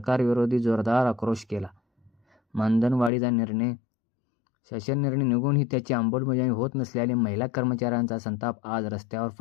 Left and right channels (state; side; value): drops out; right; at 3.1 s